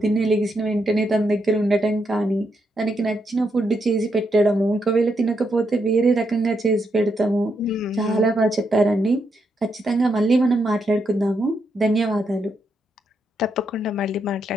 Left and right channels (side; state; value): both; normal; correlation 0.80